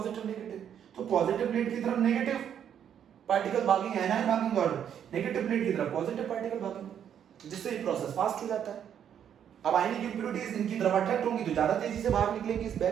नेगेटिव। तो पॉजिटिव प्लेट की तरफ नेगेटिव पार्टिकल भागेंगे, एनायन भागेंगे, और नेगेटिव प्लेट की तरफ पॉजिटिव पार्टिकल भागेंगे, जिससे ये प्रोसेस फास्ट हो जाता है। अब आयनिक इंप्योरिटीज इनकी तरफ अट्रैक्ट होंगी तो ज्यादा तेजी से बाहर निकलेंगी इस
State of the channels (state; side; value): quieter; left; 9.0 dB